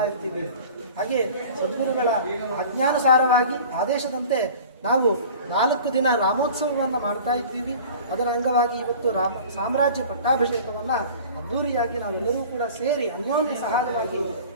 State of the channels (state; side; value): inverted; both; correlation -0.42